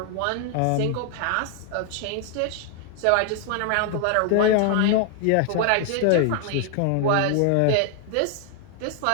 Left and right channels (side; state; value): both; different; correlation 0.00